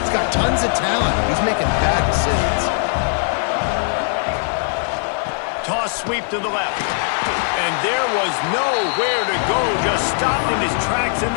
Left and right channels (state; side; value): silent; right; 57 dB below the other